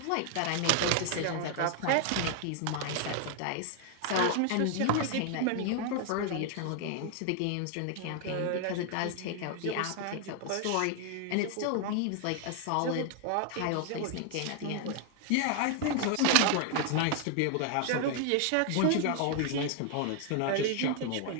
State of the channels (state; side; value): different; both; correlation 0.00